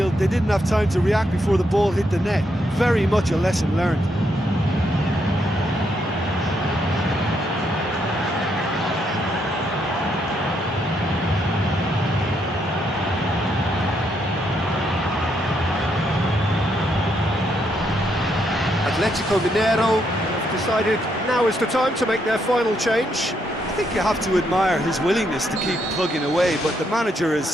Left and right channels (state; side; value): normal; both; correlation 0.77